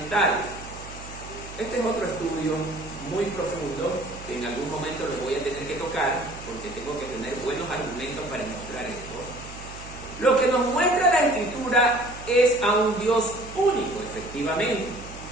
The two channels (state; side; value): noise; right; hum, 15 dB below the sound